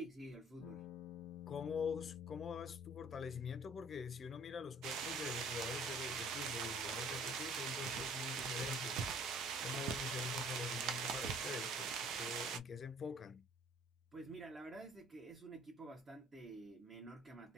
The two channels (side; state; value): both; normal; correlation 0.55